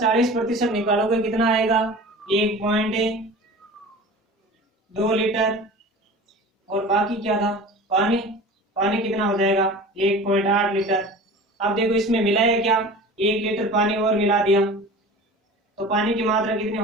निकालोगे कितना आएगा, 1.2 लीटर। और बाकी क्या था, पानी, पानी कितना हो जाएगा, 1.8 लीटर। अब देखो इसमें मिला है क्या, 1 लीटर पानी और मिला दिया, तो पानी की मात्रा कितनी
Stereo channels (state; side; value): normal; both; correlation 0.38